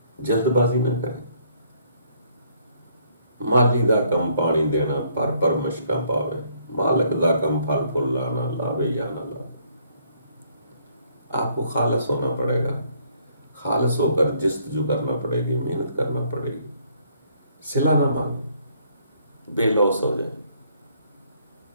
جلد بازی نہ کریں۔ مالی دا کم پانی دینا پر مشکا پاوے، مالک دا کم پھل پھول لانا لاوے یا نہ لاوے۔ آپ کو خالص ہونا پڑے گا، خالص ہو کر جستجو کرنا پڑے گی، محنت کرنا پڑے گی، صلہ نہ مانگے، بے لوث ہو جائے،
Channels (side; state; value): both; inverted; correlation -0.66